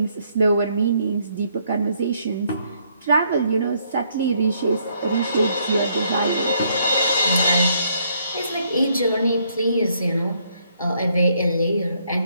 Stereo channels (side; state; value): both; inverted; correlation -0.70